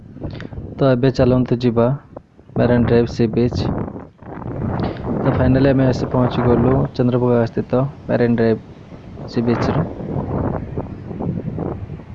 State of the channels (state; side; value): identical; both; correlation 1.00